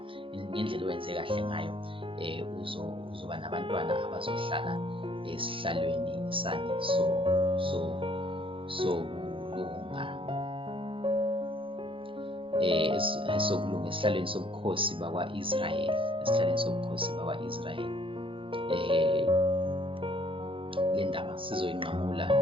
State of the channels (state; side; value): late; left; 0.25 ms